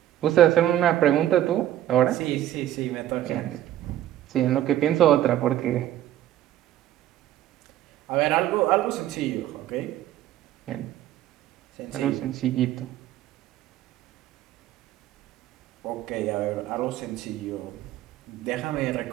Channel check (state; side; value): quieter; left; 12.8 dB